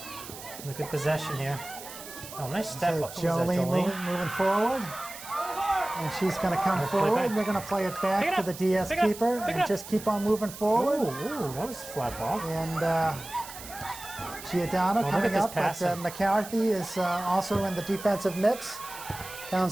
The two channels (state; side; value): noise; right; hiss, 13 dB below the sound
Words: Look at possession here. Oh, nice step So up. Who's that, Jolene moving forward. And she's going to come Play forward. back. And they're going to play it Pick back it to up. the DS Pick it up. keeper Pick it and up. just keep on moving forward. Ooh, that was a flat ball. And Giordano look coming at this up, but passing. McCarthy is also in the defensive mix.